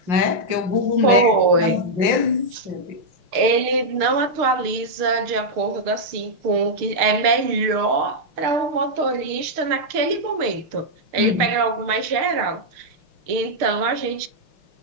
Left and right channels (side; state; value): left; late; 6.6 ms